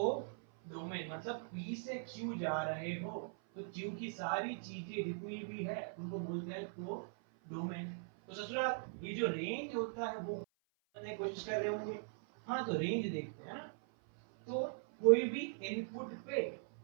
मतलब P से Q जा रहे हो तो Q की सारी चीजें जितनी भी है उनको बोलते हैं कोडोमेन। तो ससुरा ये जो रेंज होता है वो करने की कोशिश कर रहे होंगे। हाँ, तो रेंज देखते हैं ना। तो कोई भी इनपुट पे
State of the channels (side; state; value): left; silent; 51 dB below the other